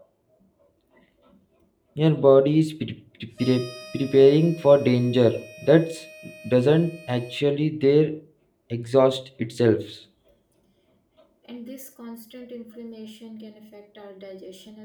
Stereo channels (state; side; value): identical; both; correlation 1.00